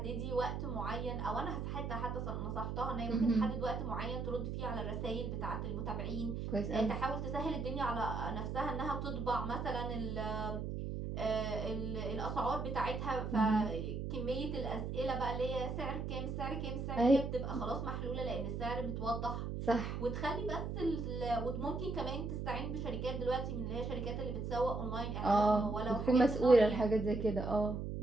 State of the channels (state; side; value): noise; right; hum, 3 dB below the sound